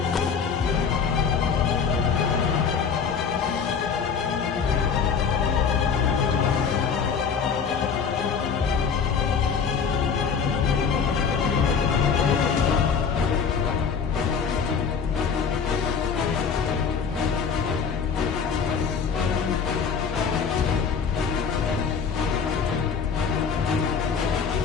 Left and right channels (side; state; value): right; quieter; 6.2 dB